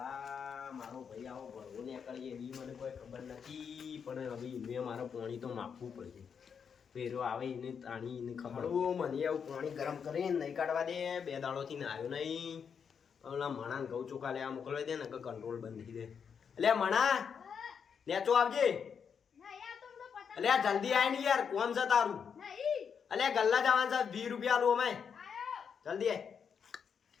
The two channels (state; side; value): quieter; right; 6.8 dB